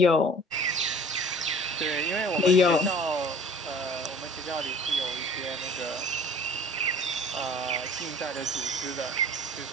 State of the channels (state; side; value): normal; both; correlation 0.48